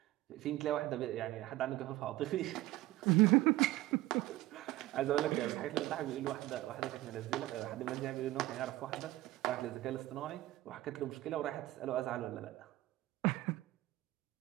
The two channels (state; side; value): quieter; left; 17.0 dB